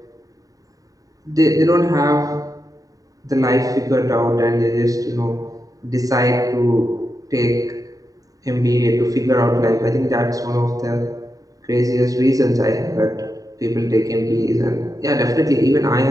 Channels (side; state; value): left; late; 0.17 ms